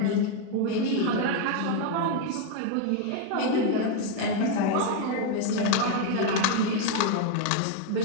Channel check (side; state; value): both; different; correlation 0.01